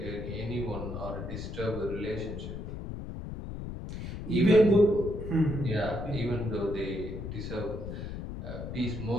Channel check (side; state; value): left; noise; rumble, 7 dB below the sound